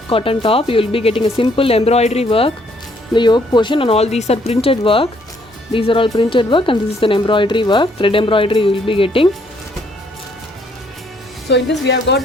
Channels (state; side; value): normal; both; correlation 0.67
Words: cotton top. You will be getting a simple embroidery work in the yoke portion, and all these are printed work. These are all printed work, and this is an embroidery work, thread embroidery you will be getting. So in this we have got